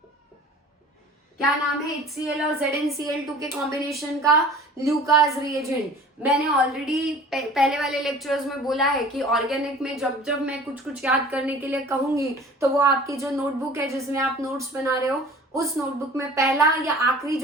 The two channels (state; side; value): normal; both; correlation 0.45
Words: क्या नाम है HCl और ZnCl2 के कॉम्बिनेशन का? Lucas reagent. मैंने ऑलरेडी पहले वाले लेक्चर्स में बोला है कि ऑर्गेनिक में जब जब मैं कुछ कुछ याद करने के लिए कहूंगी, तो वो आपकी जो नोटबुक है जिसमें आप नोट्स बना रहे हो, उस नोटबुक में पहला या आखिरी